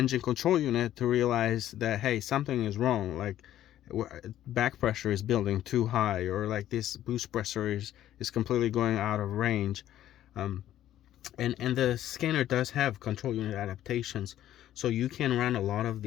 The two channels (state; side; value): quieter; right; 12.4 dB